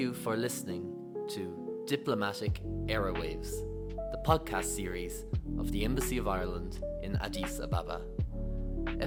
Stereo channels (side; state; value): both; identical; correlation 1.00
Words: for listening to Diplomatic Airwaves, the podcast series of the Embassy of Ireland in Addis Ababa.